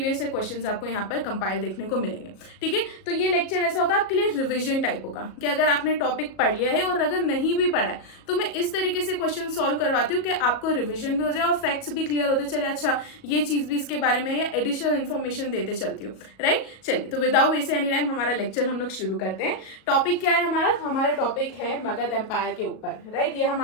ईयर क्वेश्चन आपको यहाँ पर कंपाइल देखने को मिलेंगे. ठीक है, तो ये लेक्चर ऐसा होगा आपके लिए रिवीजन टाइप होगा कि अगर आपने टॉपिक पढ़ लिया है और अगर नहीं भी पढ़ा है तो मैं इस तरीके से क्वेश्चन सॉल्व करवाती हूँ कि आपको रिवीजन भी हो जाए और फैक्ट्स भी क्लियर होते चले. अच्छा, ये चीज भी इसके बारे में, या एडिशनल इन्फॉर्मेशन देते चलती हूँ. राइट, चलिए तो विदाउट वेस्ट एनी टाइम हमारा लेक्चर हम लोग शुरू करते हैं. टॉपिक क्या है हमारा टॉपिक है मगध एम्पायर के ऊपर. राइट, ये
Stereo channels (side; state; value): right; late; 37 ms